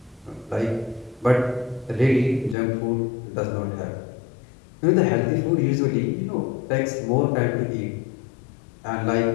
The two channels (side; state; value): right; drops out; at 2.6 s